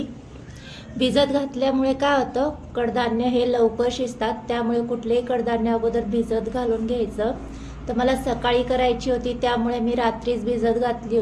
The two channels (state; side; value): identical; both; correlation 1.00